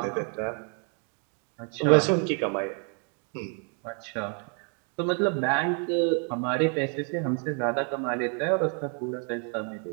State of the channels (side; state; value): left; quieter; 39.5 dB